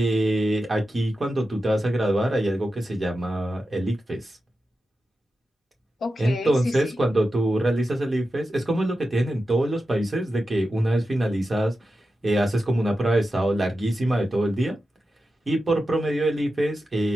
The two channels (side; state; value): both; normal; correlation 0.91